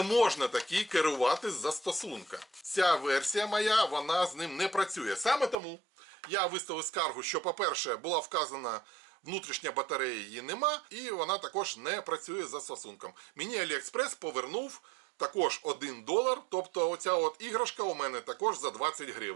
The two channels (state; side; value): drops out; left; at 5.6 s